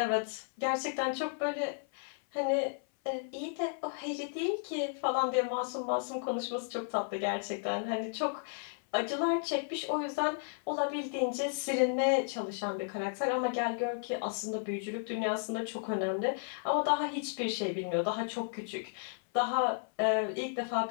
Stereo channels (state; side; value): silent; right; 55 dB below the other